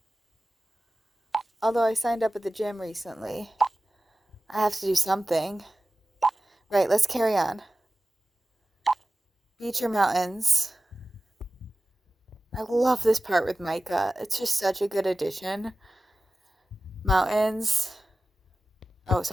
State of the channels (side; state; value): both; normal; correlation 0.96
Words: Although I signed up at the gym recently. I have to do something. Right, let's carry on. Beach or mountains? I love this part with Micah. It's just such a good addition. Mountains. Oh,